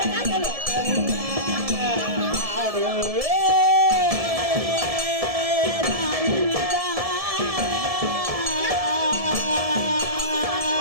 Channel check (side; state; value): left; late; 1.7 ms